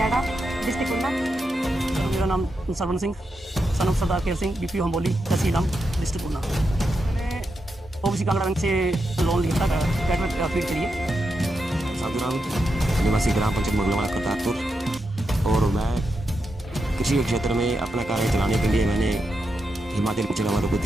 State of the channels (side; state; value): both; normal; correlation 0.86